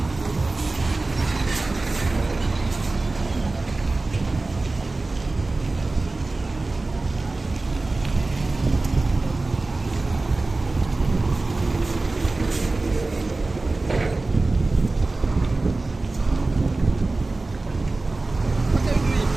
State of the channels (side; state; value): left; quieter; 3.3 dB